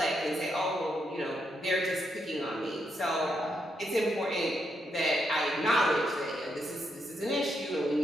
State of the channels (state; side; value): normal; both; correlation 0.80